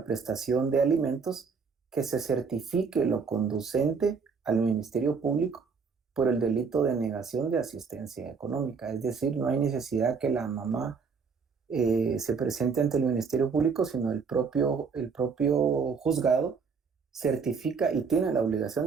prestación de alimentos, que se certifique lo conducente al Ministerio Público por el delito de negación de asistencia económica. Es decir, no hay necesidad que la mamá se presente ante el Ministerio Público, sino el propio juzgado certifica y tiene la obligación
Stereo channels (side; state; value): left; quieter; 5.4 dB